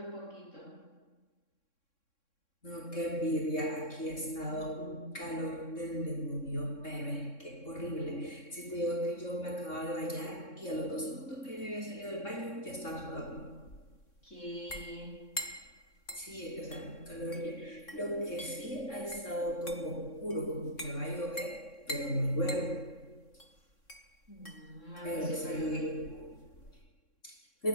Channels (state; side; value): late; right; 3.6 ms